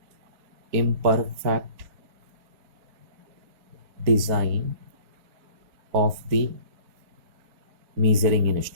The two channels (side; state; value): left; late; 4.4 ms